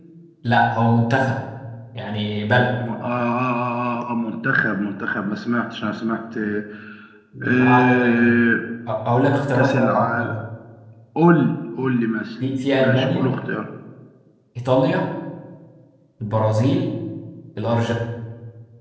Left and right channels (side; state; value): both; identical; correlation 1.00